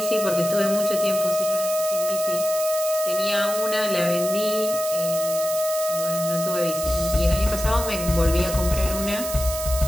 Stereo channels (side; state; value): right; noise; hiss, 7 dB below the sound